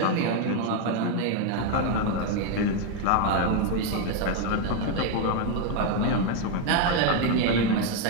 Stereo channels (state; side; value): different; both; correlation 0.01